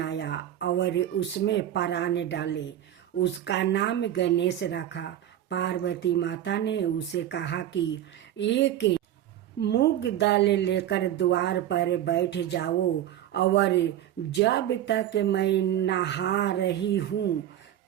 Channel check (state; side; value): quieter; left; 11.8 dB